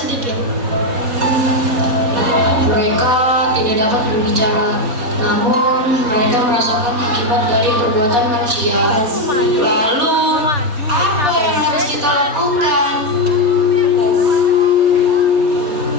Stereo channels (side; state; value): left; late; 4.2 ms